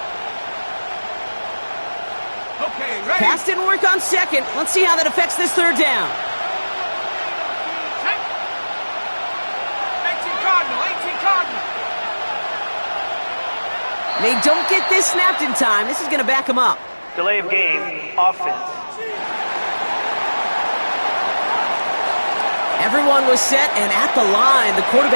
Pass didn't work on 2nd. Let's see how that affects this 3rd down. 18 Cardinal. They don't get this snapped in time. This is going to back them up. Delay of game, offense. Everyone was set and at the line. The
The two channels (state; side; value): inverted; both; correlation -1.00